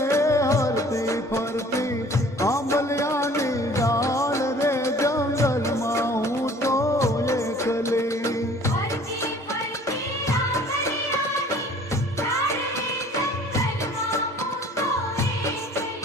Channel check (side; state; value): both; normal; correlation 0.51